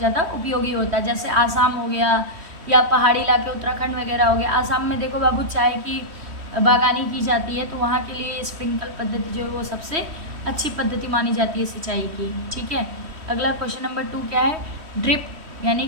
उपयोगी होता है। जैसे आसाम हो गया या पहाड़ी इलाके उत्तराखंड वगैरह हो गया। आसाम में देखो बाबू चाय की बागानी की जाती है, तो वहाँ के लिए स्प्रिंकल पद्धति जो है वो सबसे अच्छी पद्धति मानी जाती है सिंचाई की। ठीक है, अगला क्वेश्चन नंबर 2 क्या है, ड्रिप यानी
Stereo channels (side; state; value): left; late; 3.1 ms